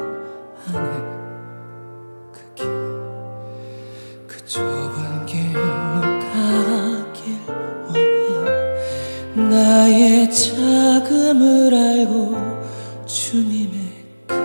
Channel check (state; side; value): inverted; both; correlation -1.00